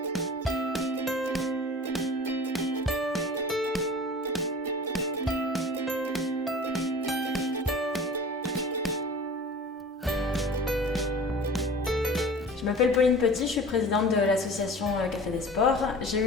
Je m'appelle Pauline Petit, je suis présidente de l'association Café des Sports.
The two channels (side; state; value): both; normal; correlation 0.40